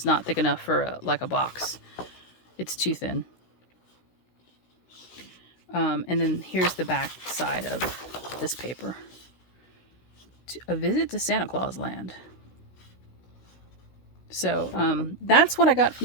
not thick enough for like a box. It's too thin. And then here's the back side of this paper. A visit to Santa Claus Land. So that's what I got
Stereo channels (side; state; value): right; late; 16 ms